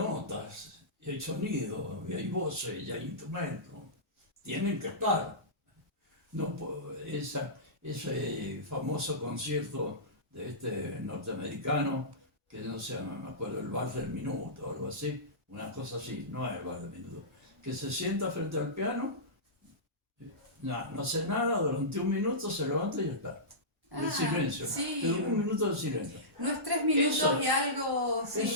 y hay sonido, y hay voces, y hay instrumentos, tienen que estar. No, ese famoso concierto de este norteamericano, que no sé, me acuerdo, el bar del minuto o algo así, una cosa así, no es el bar del minuto, que se sienta frente al piano, no hace nada, durante un minuto se levanta y ya está. El silencio, sí. pero un minuto de silencio. No es 3 minutos Eso- y algo. Sí.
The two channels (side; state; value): both; normal; correlation -0.18